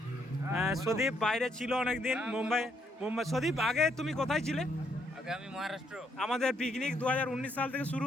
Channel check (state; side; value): normal; both; correlation 0.73